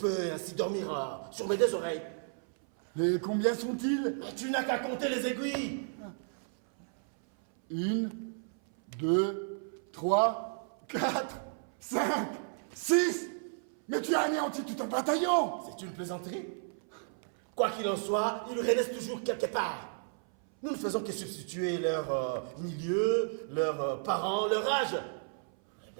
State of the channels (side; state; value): left; silent; 56 dB below the other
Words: ainsi dormir sur mes 2 oreilles. Et combien sont-ils? Mais tu n'as qu'à compter les aiguilles. 1, 2, 3, 4, 5, 6. Mais tu as anéanti tout un bataillon. C'est une plaisanterie. Quoi qu'il en soit, il reste toujours quelque part. Nous ne faisons que substituer leur milieu, leurs parents, leur âge. Eh